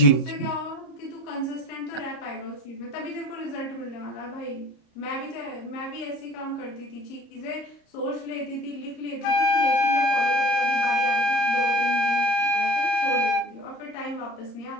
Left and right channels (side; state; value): right; late; 30 ms